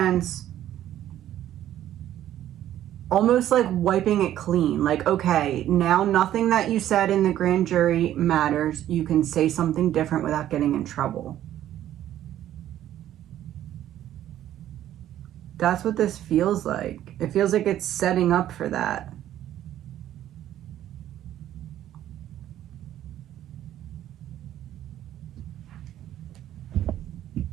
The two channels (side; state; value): left; quieter; 12.2 dB